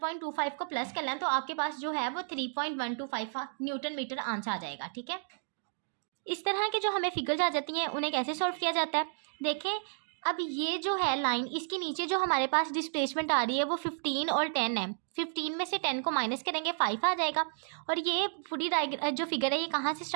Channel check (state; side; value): silent; left; digital silence